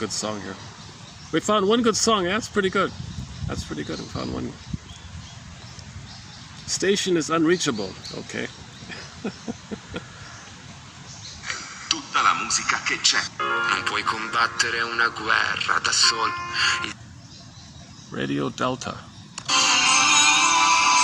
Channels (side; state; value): both; identical; correlation 1.00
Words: song here. We found one good song. Yeah, that's pretty good. We found one. Station is unreachable. Okay. Tutta la musica che c'è. Non puoi combattere una guerra da solo. Radio Delta.